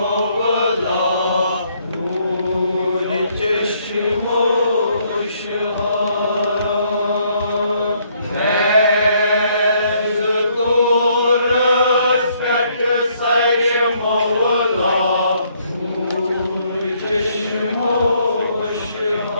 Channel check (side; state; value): both; inverted; correlation -0.69